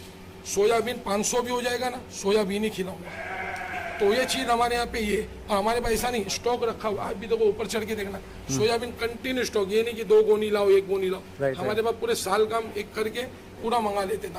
सोयाबीन 500 भी हो जाएगा ना, सोयाबीन ही खिलाऊंगा। तो ये चीज़ हमारे यहाँ पे ये, और हमारे पास ऐसा नहीं स्टॉक रखा हुआ। आप भी देखो ऊपर चढ़ के देखना, सोयाबीन कंटिन्यू स्टॉक, ये नहीं कि 2 गोनी लाओ 1 गोनी लाओ। हमारे पास पूरे साल का हम एक करके पूरा मंगा लेते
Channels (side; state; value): both; identical; correlation 1.00